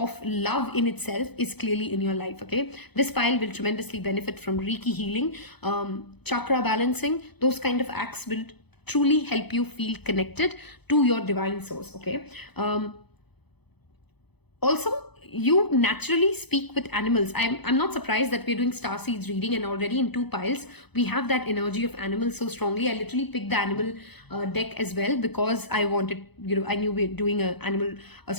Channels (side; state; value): right; late; 0.98 ms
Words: love in itself is clearly in your life. Okay, this pile will tremendously benefit from Reiki healing, chakra balancing. Those kind of acts will truly help you feel connected to your divine source. Okay. Also, you naturally speak with animals. I'm not surprised that we're doing Starseeds reading, and already in 2 piles, we have that energy of animals so strongly. I literally picked the animal deck as well because I wanted, I knew we're doing a